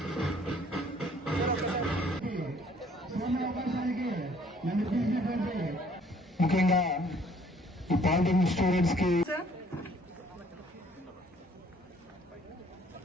ముఖ్యంగా ఈ polytechnic students కి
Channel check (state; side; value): normal; both; correlation 0.59